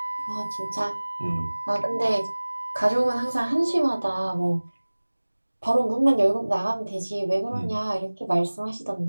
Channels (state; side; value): inverted; both; correlation -1.00